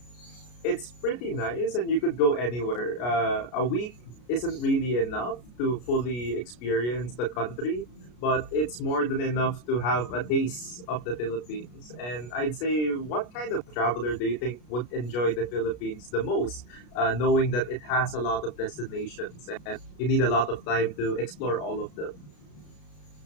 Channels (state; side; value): late; right; 33 ms